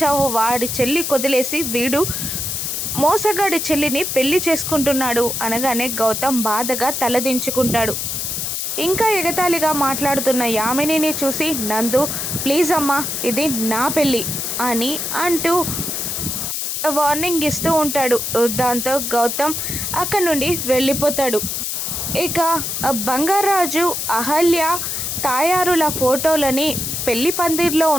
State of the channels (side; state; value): left; noise; hiss, 2 dB below the sound